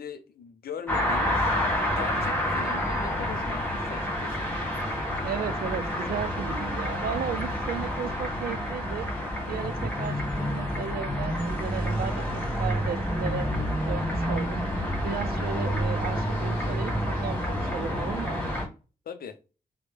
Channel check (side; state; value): both; normal; correlation 0.58